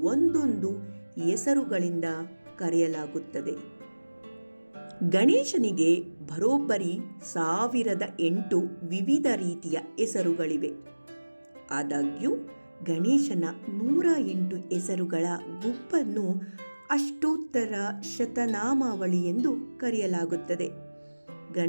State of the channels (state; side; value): inverted; both; correlation -1.00